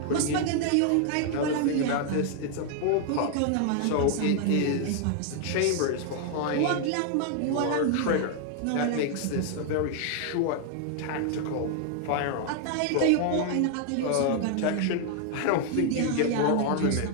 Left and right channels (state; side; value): different; both; correlation 0.00